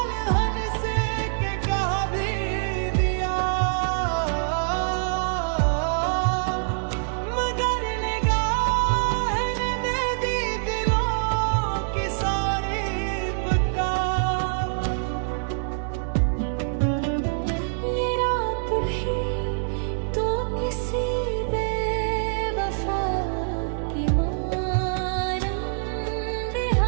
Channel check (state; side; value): silent; left; digital silence